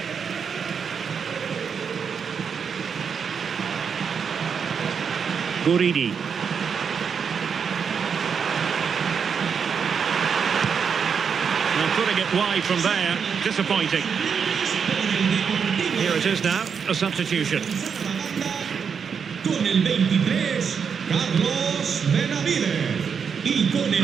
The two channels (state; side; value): quieter; left; 6.6 dB